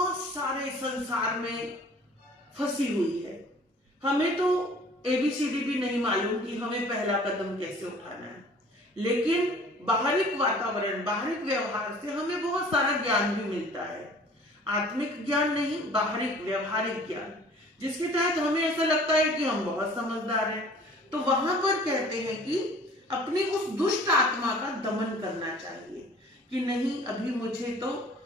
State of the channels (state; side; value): normal; both; correlation 0.50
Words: सारे संसार में फंसी हुई है, हमें तो एबीसीडी भी नहीं मालूम कि हमें पहला कदम कैसे उठाना है, लेकिन बाहरिक वातावरण, बाहरिक व्यवहार से हमें बहुत सारा ज्ञान भी मिलता है। आत्मिक ज्ञान नहीं, बाहरिक व्यवहारिक ज्ञान, जिसके तहत हमें ऐसा लगता है कि हम बहुत समझदार हैं। तो वहां पर कहते हैं कि अपनी उस दुष्ट आत्मा का दमन करना चाहिए कि नहीं, अभी मुझे तो